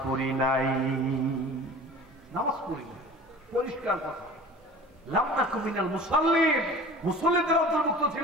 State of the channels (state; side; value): normal; both; correlation 0.41